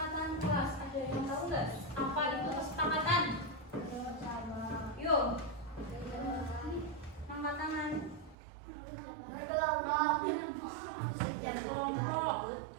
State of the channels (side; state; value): left; drops out; at 8.3 s